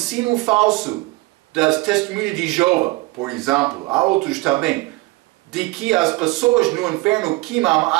falso das testemunhas de Jeová, por exemplo, há outros também, de que as pessoas no inferno queimam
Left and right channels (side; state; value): left; quieter; 22.2 dB